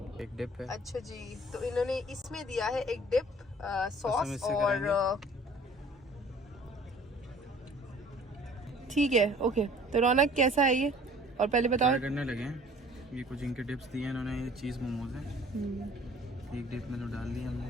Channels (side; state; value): both; normal; correlation 0.51